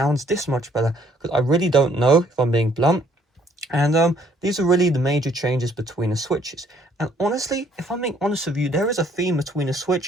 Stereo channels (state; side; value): normal; both; correlation 0.64